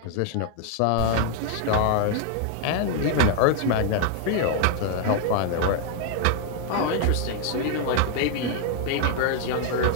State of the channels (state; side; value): different; both; correlation 0.01